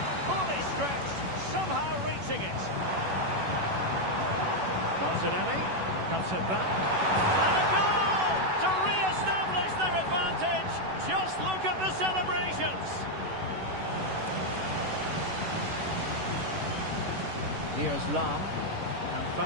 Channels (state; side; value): late; left; 11 ms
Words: finishing it. Martinelli cuts it back. And a goal to re-establish their advantage. Just look at the celebrations. Here's Lam. And